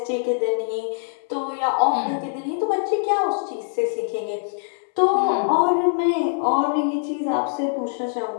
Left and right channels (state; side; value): silent; right; 60 dB below the other